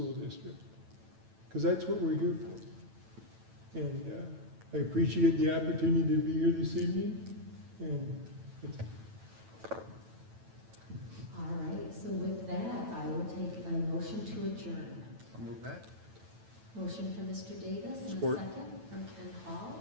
district, because that's what we're here for. And I appreciate the opportunity to be here this evening. And All right, so with that, I will take a motion to adjourn. I'll move that. Motion from Mr. Davis and Support. a second from Ken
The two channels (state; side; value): late; left; 9.1 ms